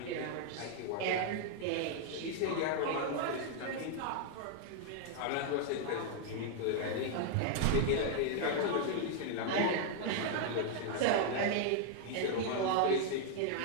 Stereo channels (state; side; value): different; both; correlation 0.00